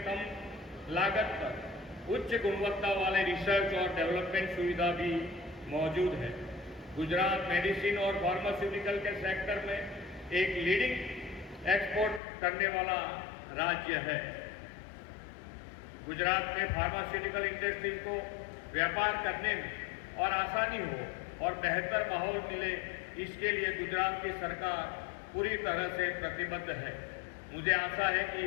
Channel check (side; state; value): right; drops out; at 12.2 s